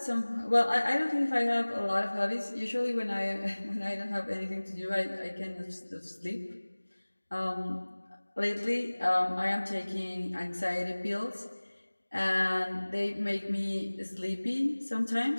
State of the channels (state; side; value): inverted; both; correlation -1.00